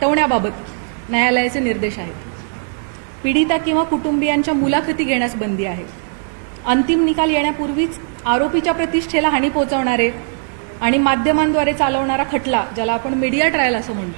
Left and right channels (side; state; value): left; silent; digital silence